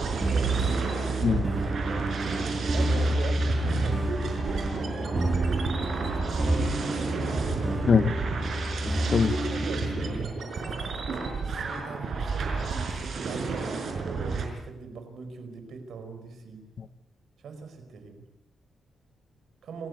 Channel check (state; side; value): normal; both; correlation 0.83